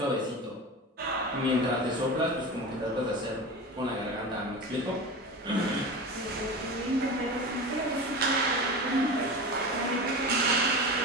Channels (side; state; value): both; normal; correlation 0.28